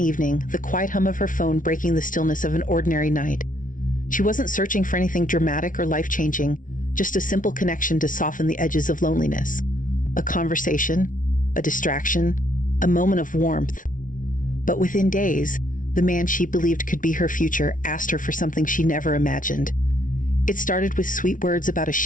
evening, the quiet hum of her phone breaking the stillness of an ordinary night. She wasn't searching for anything dramatic or life-changing, just a simple connection to soften the edges of loneliness. A conversation, a distraction, a moment of warmth. But within days, the man she believed could be her future asked her for something she never imagined. It started with sweet words about a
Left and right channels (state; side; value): late; right; 0.38 ms